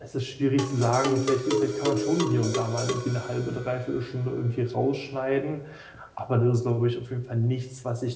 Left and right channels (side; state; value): both; identical; correlation 1.00